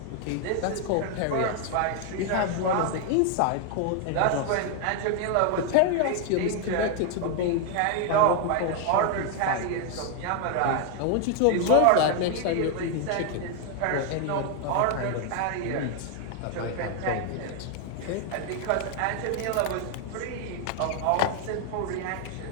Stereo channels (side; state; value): both; different; correlation 0.00